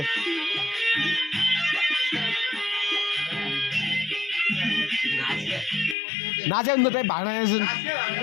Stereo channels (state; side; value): drops out; right; at 6.0 s